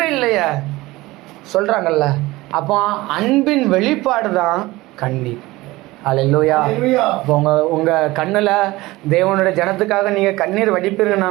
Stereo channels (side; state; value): left; quieter; 19.6 dB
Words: இல்லையே சொல்றாங்கல்ல. அப்போ அன்பின் வெளிப்பாடு தான் கண்ணீர். அல்லேலூயா. இப்போ உங்க கண்ணுல தேவனுடைய ஜனத்துக்காக நீங்க கண்ணீர்